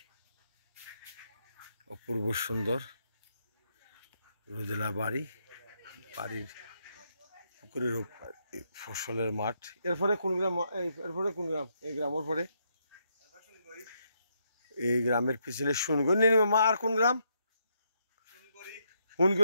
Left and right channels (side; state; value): both; inverted; correlation -0.77